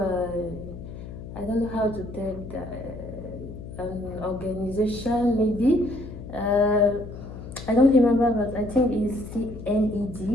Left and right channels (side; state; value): left; noise; hum, 12 dB below the sound